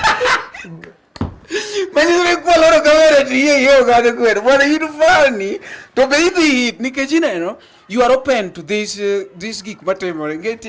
Manyi koloro kamera tiye yo ga kwero bwana you funny to be hit nikech ineno you are open to this gik matimore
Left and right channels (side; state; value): both; identical; correlation 1.00